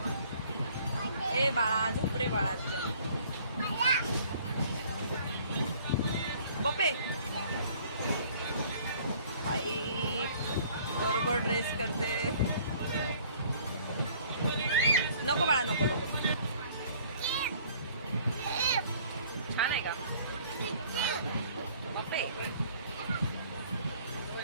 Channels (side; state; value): both; inverted; correlation -0.55